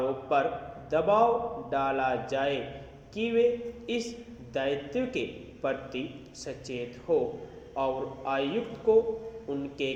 पर दबाव डाला जाए कि वे इस दायित्व के प्रति सचेत हो और आयुक्त को उनके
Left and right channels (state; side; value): identical; both; correlation 1.00